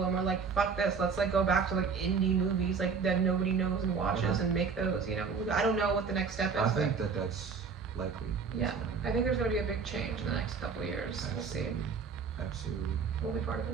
and we're like, fuck this, let's like go back to like indie movies like that nobody knows and watches and make those. You know, I don't know what the next step is. I think that's likely. Yeah, I think there's gonna be a big change in the next couple of years. Absolutely. We'll see. Absolutely. We'll be part of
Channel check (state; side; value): quieter; left; 5.5 dB